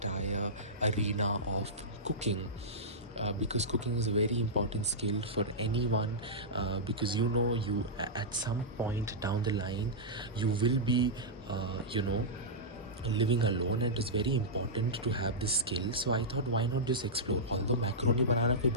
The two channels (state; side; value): normal; both; correlation -0.12